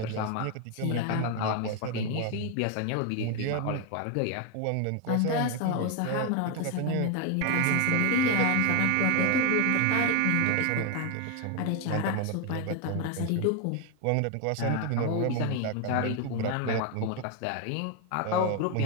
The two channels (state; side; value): different; both; correlation 0.01